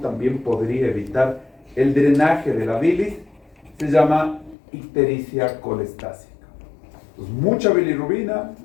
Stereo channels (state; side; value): drops out; right; at 4.5 s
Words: también podría evitar el drenaje de la bilis, se llama ictericia colestásica. Entonces, mucha bilirrubina,